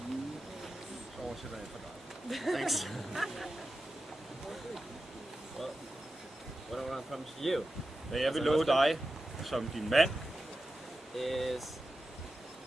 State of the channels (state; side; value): normal; both; correlation 0.92